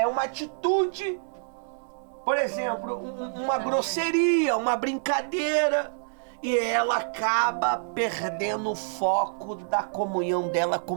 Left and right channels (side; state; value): left; silent; digital silence